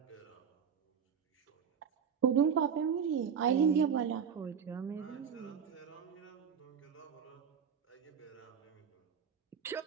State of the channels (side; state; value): left; quieter; 7.2 dB